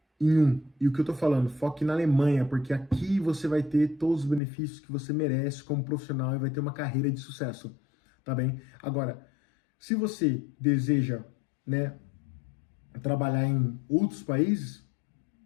em um. E o que eu tô falando, foque na Alemanha, porque aqui você vai ter todos os benefícios que você merece como profissional e vai ter uma carreira de sucesso, tá bem? Agora, se você deseja, né, trabalhar em outros países,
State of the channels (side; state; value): right; drops out; at 4.4 s